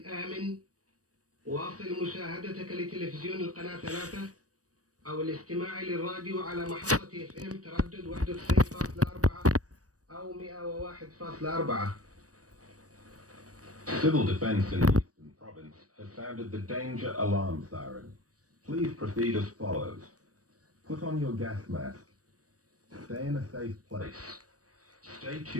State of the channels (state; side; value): late; left; 0.66 ms